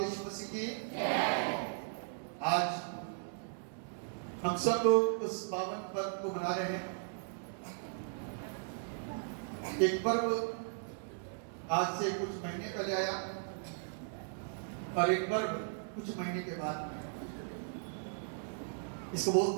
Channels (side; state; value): left; silent; digital silence